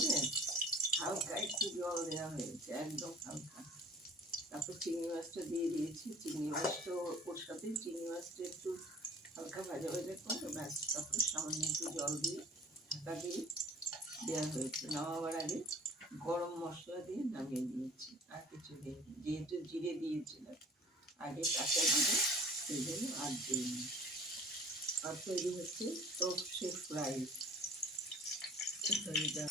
হালকা একটু জল দেওয়া হয়েছে, একদম হালকা। তারপর চিংড়ি মাছটা দিয়ে দিয়েছি, চিংড়ি মাছটা ওর সাথে চিংড়ি মাছটা একটু হালকা ভাজা ভাজা করে ব্যাস, তারপরে সামান্য একটু জল দিয়ে ঢাকা দিয়ে দেওয়া হয়েছে। নামাবার আগে গরম মশলা দিয়ে নামিয়ে দিয়েছি, আর কিছু দিইনি, যেহেতু জিরে দিয়েছিলাম আগে কাঁচা জিরে, সেই জন্য আর দিইনি। আর তৈরি হচ্ছে সর্ষে ফ্রাই।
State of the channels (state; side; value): normal; both; correlation 0.46